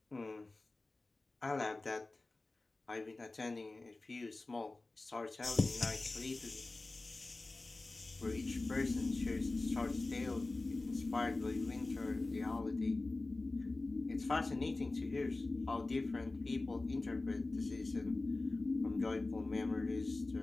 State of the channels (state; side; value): quieter; right; 3.2 dB